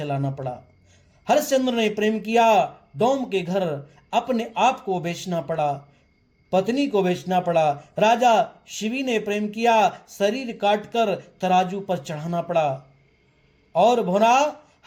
पड़ा। हरिश्चंद्र ने प्रेम किया, डोम के घर अपने आप को बेचना पड़ा, पत्नी को बेचना पड़ा। राजा शिवी ने प्रेम किया, शरीर काटकर तराजू पर चढ़ाना पड़ा। और भोना,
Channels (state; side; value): identical; both; correlation 1.00